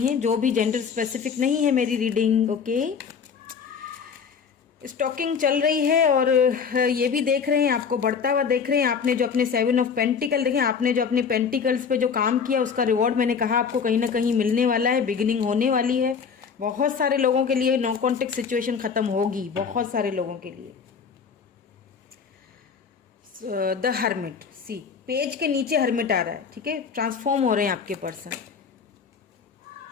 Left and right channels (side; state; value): right; quieter; 6.3 dB